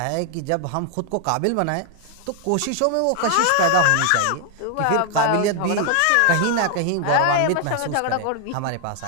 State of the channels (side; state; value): both; different; correlation 0.00